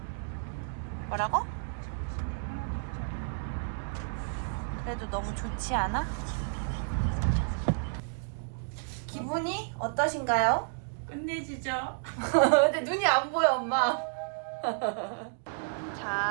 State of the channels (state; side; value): silent; left; digital silence